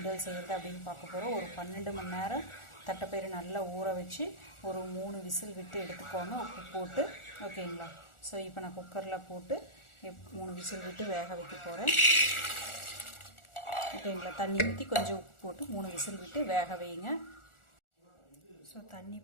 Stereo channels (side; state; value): right; late; 1.4 ms